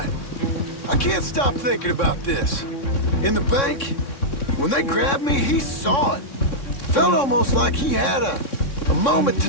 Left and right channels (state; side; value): late; right; 3.6 ms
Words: I can't stop thinking about this. In the bank, when they grabbed me, he saw it. Felt almost like he had a moment to